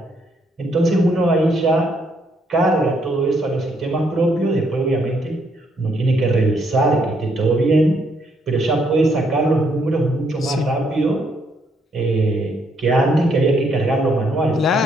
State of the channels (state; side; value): normal; both; correlation 0.72